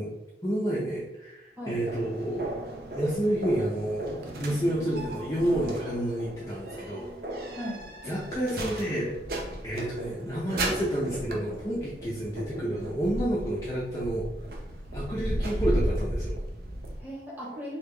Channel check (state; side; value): normal; both; correlation 0.78